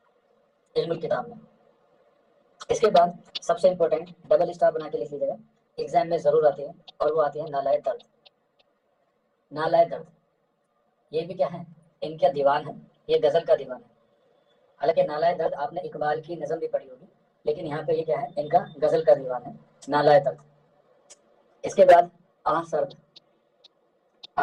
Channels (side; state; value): both; identical; correlation 1.00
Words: علم الکتاب میں. اس کے بعد سب سے امپورٹنٹ ڈبل اسٹار بنا کے لکھ لیجیے گا ایگزام میں ضرور آتی ہے اور وہ آتی ہے نالائے درد. نالائے درد یہ بھی کیا ہے ان کا دیوان ہے یہ غزل کا دیوان ہے. حالانکہ نالائے درد آپ نے اقبال کی نظم بھی پڑھی ہوگی لیکن یہاں پہ یہ کیا ہے ان کا غزل کا دیوان ہے نالائے درد. اس کے بعد آہ سرد.